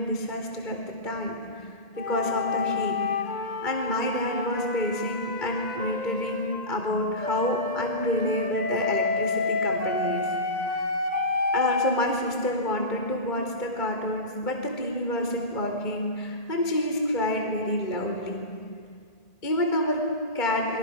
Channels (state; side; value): late; right; 1.8 ms